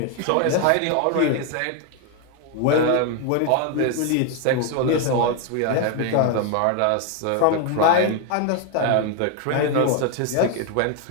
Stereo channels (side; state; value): both; different; correlation 0.01